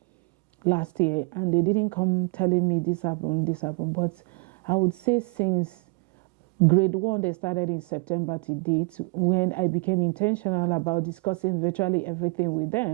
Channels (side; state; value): left; quieter; 30.2 dB